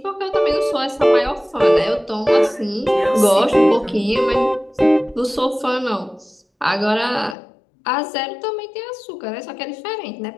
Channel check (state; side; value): drops out; right; at 7.4 s